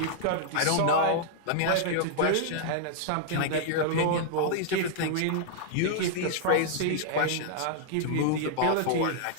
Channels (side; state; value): both; different; correlation -0.01